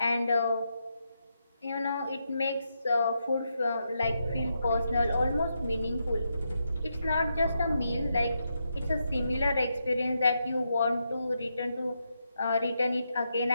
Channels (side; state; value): both; inverted; correlation -0.83